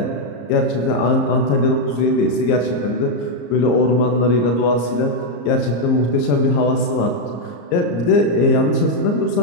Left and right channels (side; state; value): right; late; 34 ms